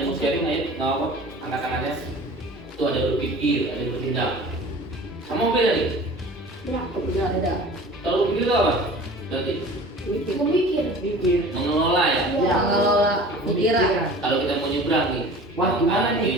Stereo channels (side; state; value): both; normal; correlation 0.42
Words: yang mau sharing? Ayo, nggak apa, angkat tangannya. Itu ada berpikir, ada bertindak. Sama beda nih? Ya. Ada. Kalau berpikir itu apa? Berarti Mikir. mengelola ya? Ya, mengelola pikiran. Kalau kita mau nyebrang nih, Wah, gimana nih? Gini